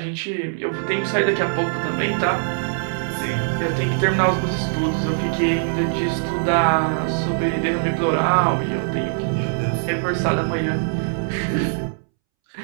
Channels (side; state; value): left; silent; 64 dB below the other